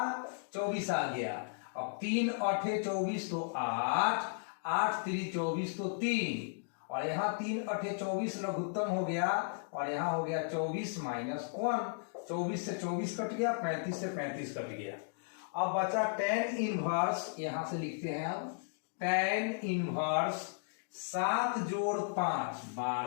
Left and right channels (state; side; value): silent; right; digital silence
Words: 24 आ गया। अब 3 8 24 तो 8, 8 3 24 तो 3, और यहाँ 3 8 24 लघुत्तम हो गया, और यहाँ हो गया 24 माइनस 1। 24 से 24 कट गया, 35 से 35 कट गया। अब बचा tan इनवर्स, यहां से लिखते हैं अब tan इनवर्स 7 जोड़ 5